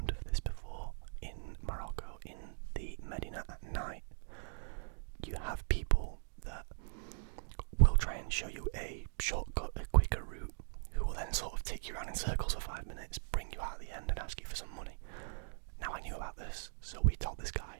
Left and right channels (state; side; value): silent; left; digital silence